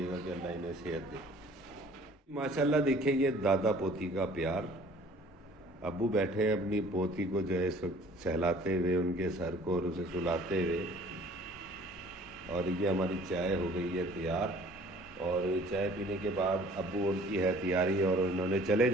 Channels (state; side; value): normal; both; correlation 0.52